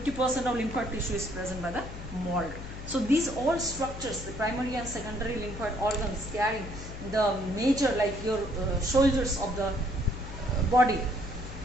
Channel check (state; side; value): noise; left; hum, 10 dB below the sound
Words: of lymphatic tissue is present by the MALT. So these all structures, the primary and secondary lymphatic organs carrying the major, like your soldiers of the body,